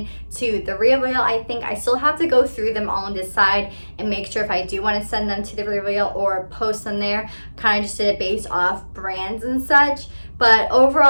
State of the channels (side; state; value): both; inverted; correlation -1.00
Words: to the Resell. I think I still have to go through them all and decide and make sure if I do want to send them to the Resell or post them there. Kind of just did it based off brands and such. But